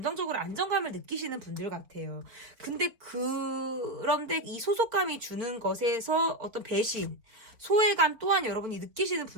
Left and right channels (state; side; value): late; left; 4.0 ms